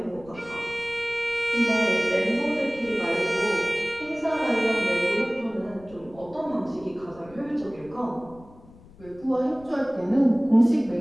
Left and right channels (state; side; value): noise; left; rumble, 22 dB below the sound